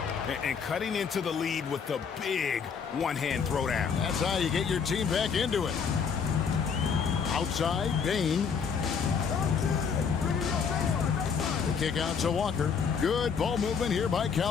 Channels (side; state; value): right; quieter; 6.3 dB